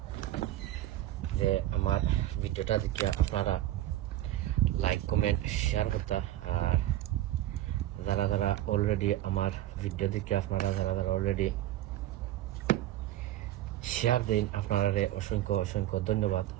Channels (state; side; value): quieter; left; 14.0 dB